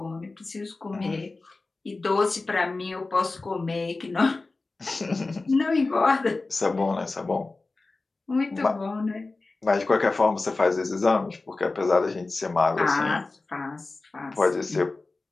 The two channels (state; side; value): quieter; right; 3.5 dB